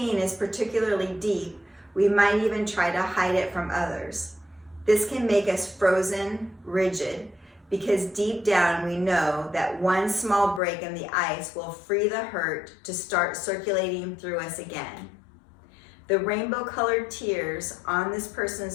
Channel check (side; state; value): right; drops out; at 10.6 s